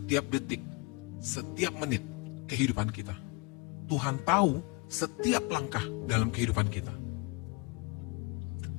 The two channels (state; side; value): quieter; right; 27.2 dB